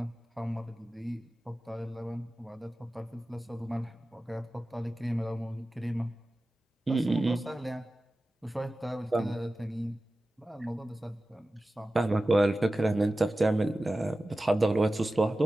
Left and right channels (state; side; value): normal; both; correlation 0.95